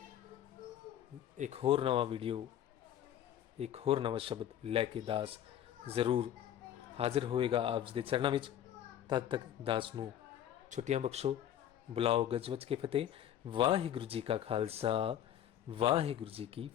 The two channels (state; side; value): quieter; right; 10.9 dB